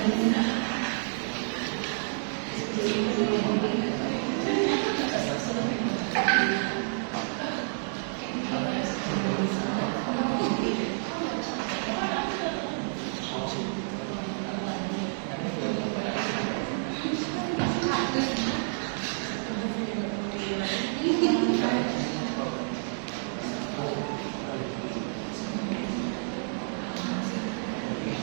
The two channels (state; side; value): silent; left; digital silence